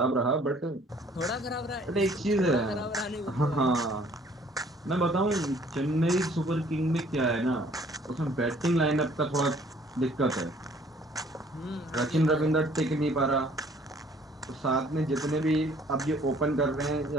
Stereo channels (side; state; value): both; normal; correlation 0.58